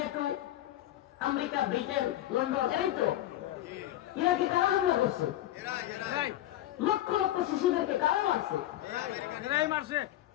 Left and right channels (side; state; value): right; quieter; 13.7 dB